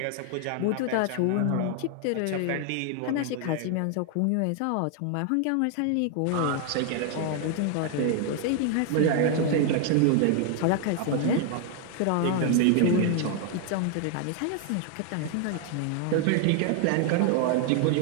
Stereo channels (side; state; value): both; different; correlation 0.00